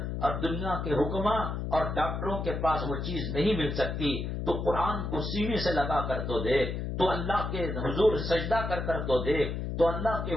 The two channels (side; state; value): left; noise; hum, 3 dB below the sound